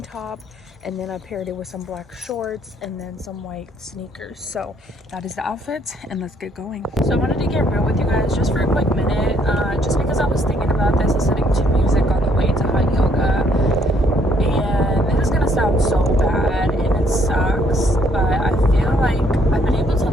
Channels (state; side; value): normal; both; correlation 0.67